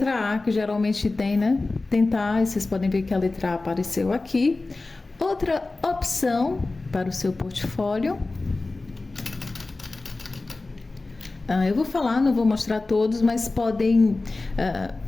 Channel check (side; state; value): right; quieter; 3.3 dB